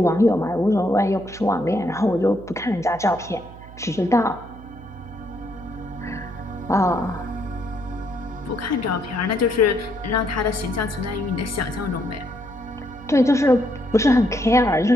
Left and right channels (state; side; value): noise; right; hum, 17 dB below the sound